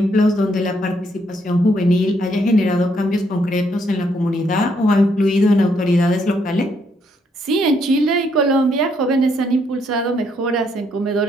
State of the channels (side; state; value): both; normal; correlation 0.72